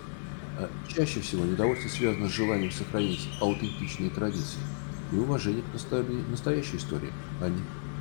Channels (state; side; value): silent; right; digital silence